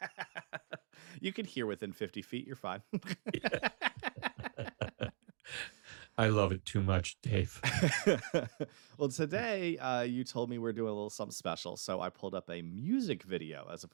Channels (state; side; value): silent; left; digital silence